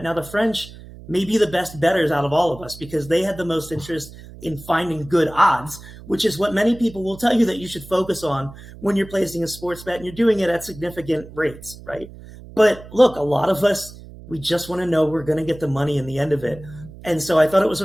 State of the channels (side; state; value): right; noise; hum, 17 dB below the sound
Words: Now, the French may be the best bettors out of all of us because they had the most interest in finding good odds, which is what many people will tell you that you should focus on when you're placing a sports bet and you're doing it at significant rates, right? But look, a lot of us, we just want to know we're going to get the money in the end of it. And so I thought it was